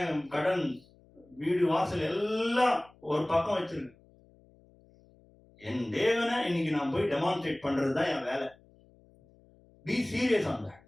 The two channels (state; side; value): noise; left; hum, 29 dB below the sound